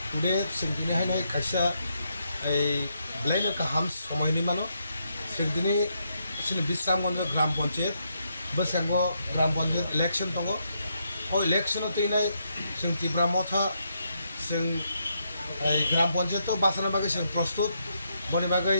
टुडे जों दिनै हाय खायसा ब्लाइनो गाहाम समयनि मानो जों दिनै जोंनि बिस्रामगन्ज ग्राम पन्चायत बसांगो ग्राम पन्चायत इलेक्शन दङ ओ इलेक्शनाव तैनाय जों टिप्रा मथा जों ग्राम पन्चायत बासानो बागै जों प्रस्तुत बनि बागै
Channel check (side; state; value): both; inverted; correlation -0.78